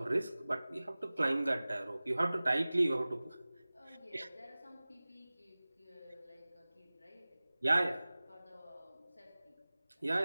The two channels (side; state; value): both; inverted; correlation -0.99